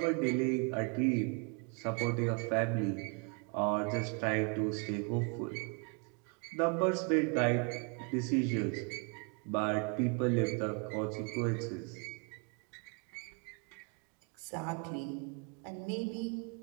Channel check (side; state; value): left; quieter; 34.9 dB